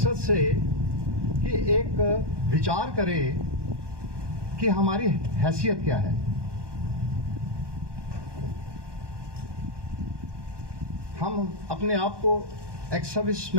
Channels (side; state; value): left; late; 1.2 ms